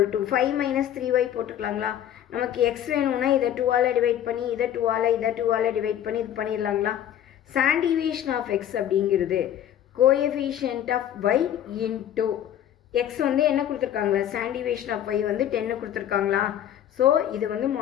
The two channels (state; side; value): quieter; right; 10.8 dB